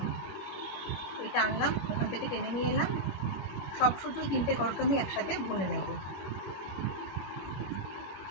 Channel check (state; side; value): late; right; 21 ms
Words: এটা আনলাম, ওখান থেকে টেনে নিয়ে এলাম। সব শুধু 3টে ঘরকে আমি একসাথে বুনে নেব।